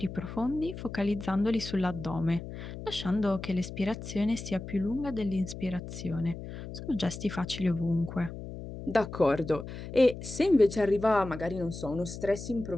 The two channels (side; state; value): left; noise; hum, 10 dB below the sound